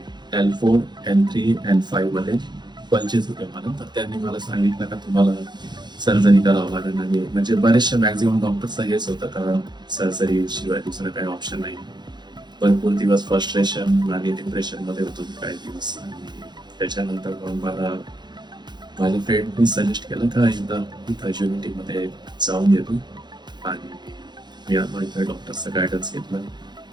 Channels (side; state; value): left; late; 0.21 ms